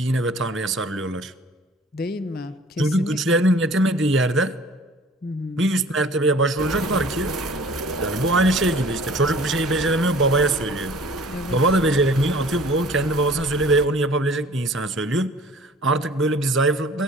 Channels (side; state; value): both; normal; correlation 0.49